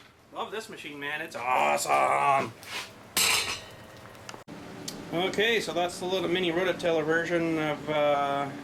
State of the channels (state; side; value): identical; both; correlation 1.00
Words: this machine, man. It's awesome. Okay, so that's the little mini rototiller version of the